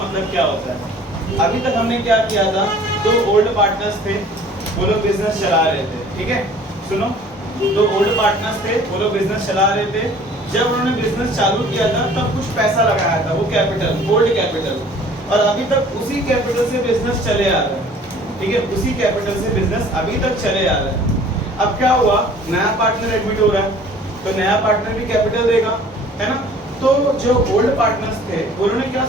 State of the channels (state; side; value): normal; both; correlation 0.51